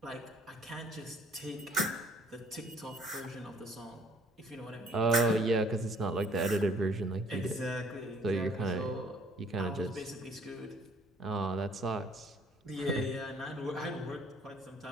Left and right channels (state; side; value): normal; both; correlation 0.59